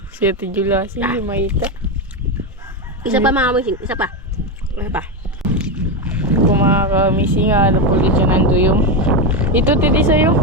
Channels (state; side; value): normal; both; correlation 0.11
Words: Si Ate Jula, hindi makita. Isa pa mga kamising, isa pa. Isa pa. Kung mga kamising, ano po ulit siya nanduyong. Ito, titi sa'yo.